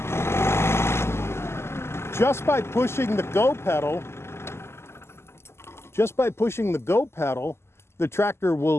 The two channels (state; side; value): late; right; 0.12 ms